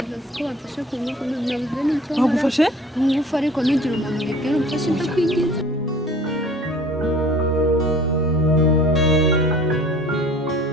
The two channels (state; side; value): normal; both; correlation 0.48